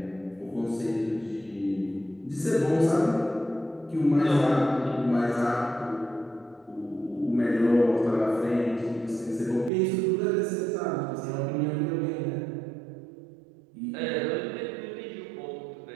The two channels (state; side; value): drops out; left; at 9.7 s